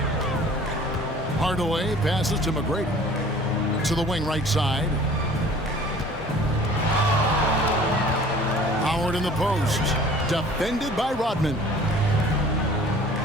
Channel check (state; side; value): normal; both; correlation 0.49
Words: Hardaway passes to McGrady. To the wing right side. Howard in the post. Defended by Rodman.